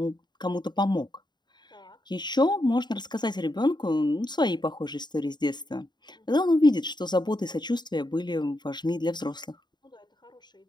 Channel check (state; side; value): late; right; 0.21 ms